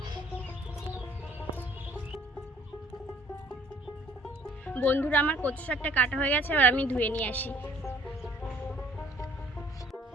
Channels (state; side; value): normal; both; correlation 0.57